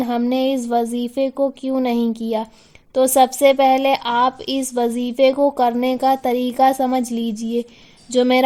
ہم نے اس وظیفے کو کیوں نہیں کیا۔ تو سب سے پہلے آپ اس وظیفے کو کرنے کا طریقہ سمجھ لیجئے۔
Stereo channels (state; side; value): identical; both; correlation 1.00